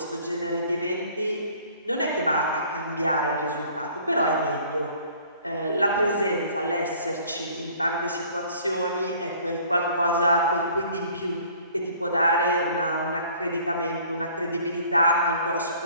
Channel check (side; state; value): both; inverted; correlation -0.54